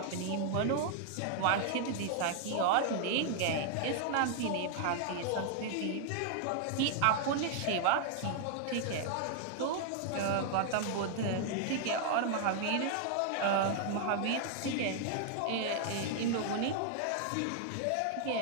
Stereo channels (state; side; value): different; both; correlation 0.00